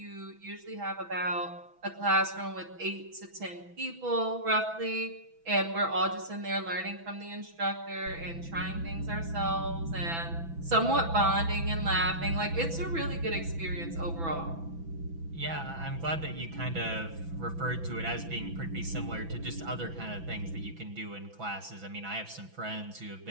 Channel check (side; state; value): left; late; 6.0 ms